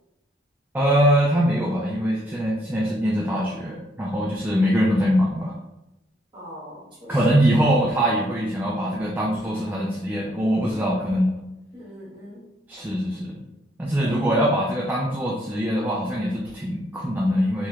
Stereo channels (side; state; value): both; normal; correlation 0.70